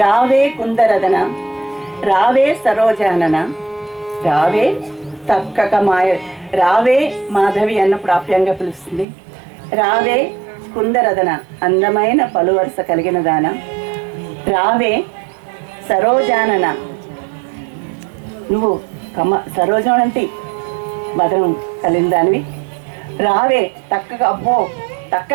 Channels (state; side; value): drops out; left; at 9.1 s